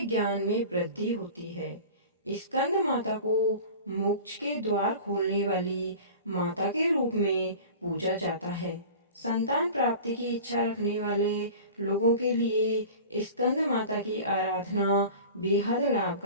ज्ञान में वृद्धि होती है। स्कंद माता को मोक्ष के द्वार खोलने वाली माता के रूप में पूजा जाता है। संतान प्राप्ति की इच्छा रखने वाले लोगों के लिए स्कंद माता की आराधना बेहद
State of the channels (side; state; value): both; inverted; correlation -0.38